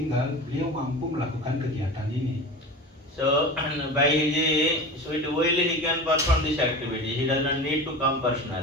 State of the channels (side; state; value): both; normal; correlation 0.31